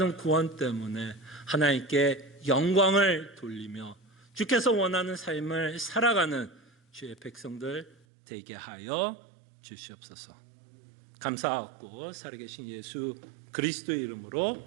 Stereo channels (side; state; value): left; drops out; at 8.0 s